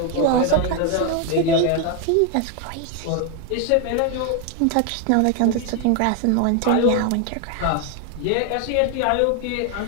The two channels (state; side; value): different; both; correlation 0.01